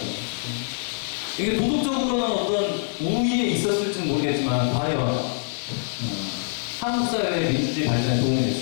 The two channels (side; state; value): right; silent; digital silence